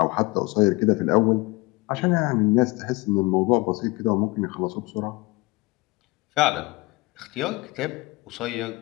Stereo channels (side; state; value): right; quieter; 23.6 dB